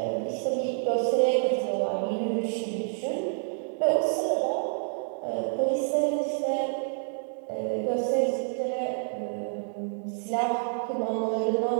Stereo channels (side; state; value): left; silent; digital silence